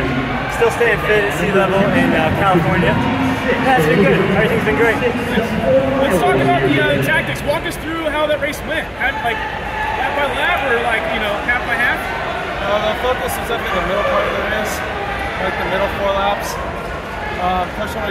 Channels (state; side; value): identical; both; correlation 1.00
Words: still staying fit at sea level in California. Yeah, it's been good. Everything's been great. Let's talk about the tactics. Walk us through how that race went. Like lap by lap, or like half by half? The focus is definitely the middle part of the race, like the middle 4 laps. Push when